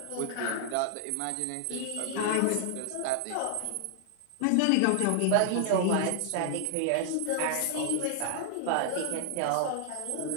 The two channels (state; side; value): different; both; correlation 0.00